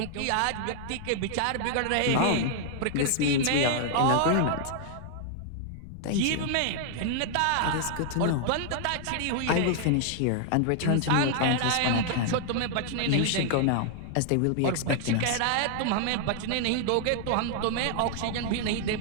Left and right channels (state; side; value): different; both; correlation 0.00